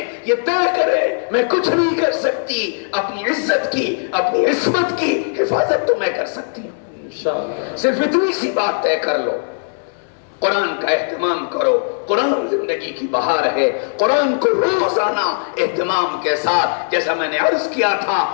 یہ طے کرے میں کچھ نہیں کر سکتی، اپنی عزت کی، اپنی عصمت کی حفاظت تو میں کر سکتی ہوں۔ صرف اتنی سی بات طے کر لو، قرآن کا اہتمام کرو، قرآن زندگی کی بہار ہے، قرآن کو روزانہ اہتمام کے ساتھ، جیسا میں نے عرض کیا تھا،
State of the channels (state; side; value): silent; right; digital silence